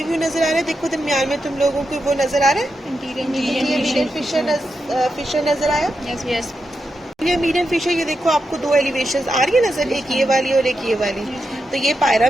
व्यू नजर आ रहा है, देखो दरमियान में तुम लोगों को वो नजर आ रहा है, इंटीरियर फिशर नजर आया। ये मीडियम फिशर, ये देखो आपको दो एलिवेशंस आ रही है नजर, एक ये वाली और एक ये वाली। तो ये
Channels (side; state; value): both; normal; correlation 0.87